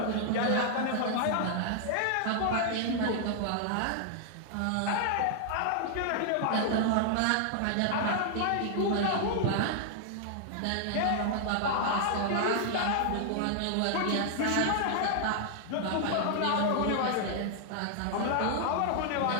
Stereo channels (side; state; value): both; different; correlation 0.00